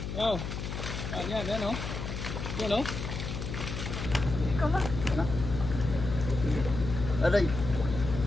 Wow. Yan o. Yan o. Ikaw ba? Aray.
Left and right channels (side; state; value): left; noise; hum, 5 dB below the sound